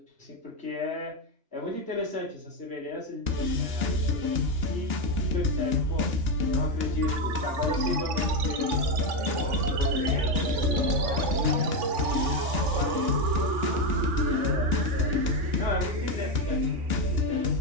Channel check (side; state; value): left; late; 3.5 ms